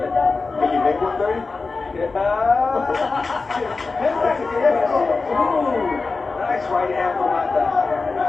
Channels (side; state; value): right; quieter; 4.0 dB